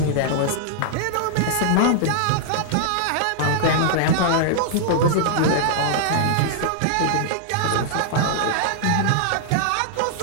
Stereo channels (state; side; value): different; both; correlation -0.01